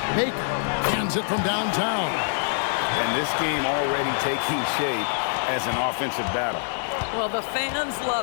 Baker hands it from downtown. And this game already taking shape as an offensive battle. Well, the fans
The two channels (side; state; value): right; silent; digital silence